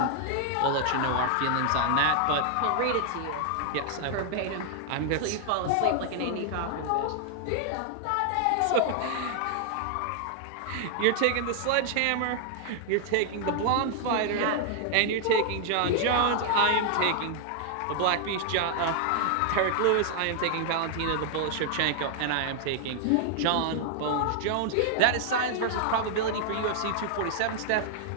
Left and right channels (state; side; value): different; both; correlation 0.00